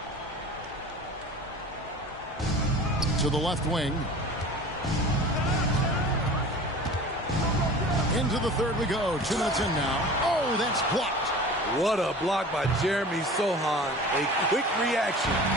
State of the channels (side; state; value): both; normal; correlation 0.39